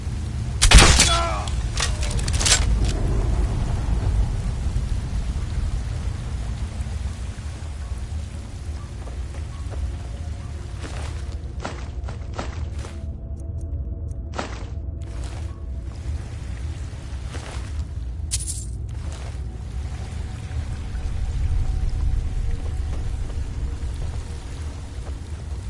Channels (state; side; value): identical; both; correlation 1.00